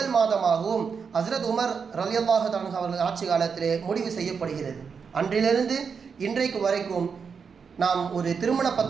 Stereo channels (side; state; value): left; quieter; 6.0 dB